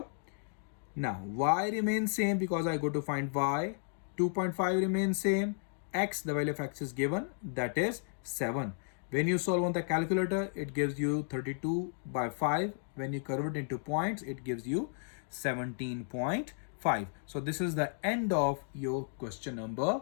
Now y remains same because I go to find y. 2.5 remains same. X, the value of x is given, that is 7. When you solve on the calculator, it gives you 32 by 5. When you convert it into points, it gives you 17.5. So this is the end of your question number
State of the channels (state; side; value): silent; right; digital silence